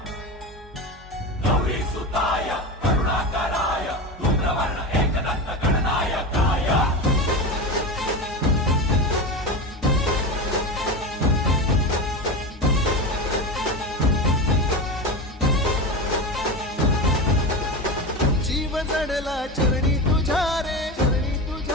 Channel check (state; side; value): normal; both; correlation 0.22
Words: गौरी सुताय करुणाकराय धूम्रवर्ण एकदंत गणनायकाय जीव जडला चरणी तुझ्या रे